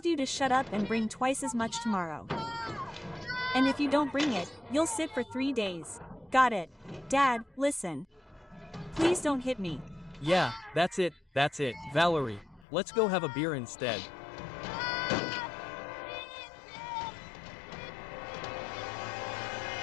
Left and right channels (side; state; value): right; drops out; at 12.7 s